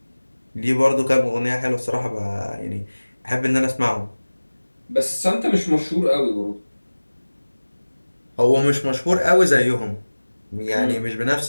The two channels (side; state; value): both; inverted; correlation -1.00